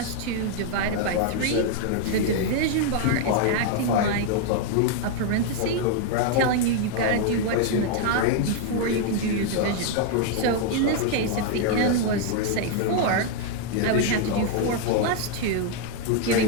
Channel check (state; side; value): different; both; correlation 0.00